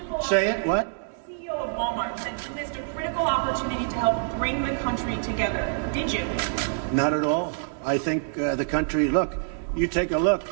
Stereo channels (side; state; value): left; silent; digital silence